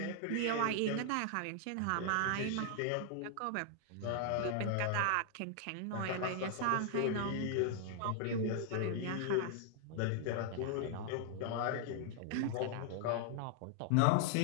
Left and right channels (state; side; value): different; both; correlation 0.00